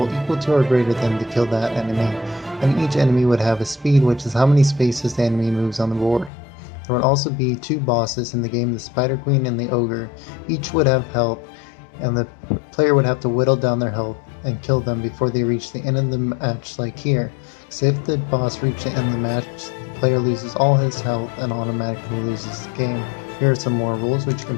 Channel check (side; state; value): right; drops out; at 6.3 s